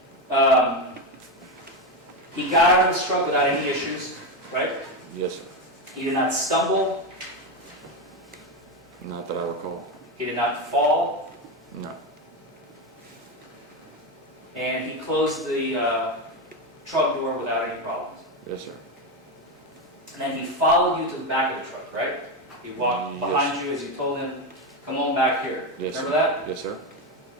He got out of his truck without any issues, right? Yes, sir. He did not stumble. Not that I recall. He did not fall. No. And he closed the truck door without any problems. Yes, sir. And then he followed you to the back of the truck, right? He walked Yes. behind you as you told him, come on back here. Yes, Remember sir. that? Yes, sir.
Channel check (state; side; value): normal; both; correlation 0.12